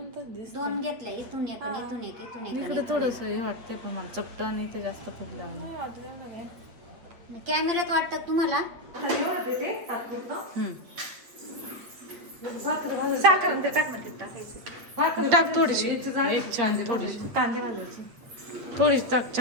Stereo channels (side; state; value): left; late; 8.2 ms